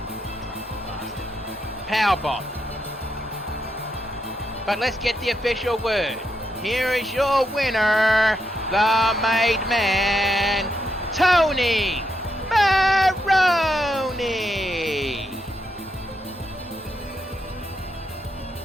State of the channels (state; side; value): normal; both; correlation 0.81